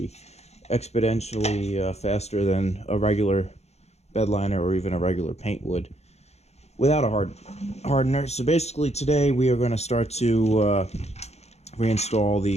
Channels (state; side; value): late; right; 0.31 ms